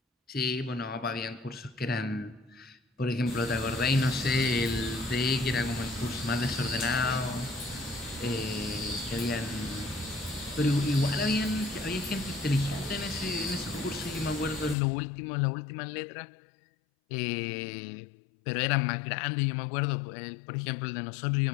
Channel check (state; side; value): drops out; right; at 14.8 s